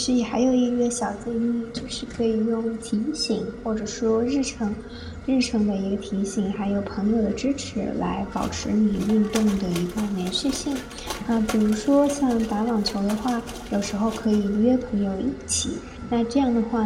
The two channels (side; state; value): both; identical; correlation 1.00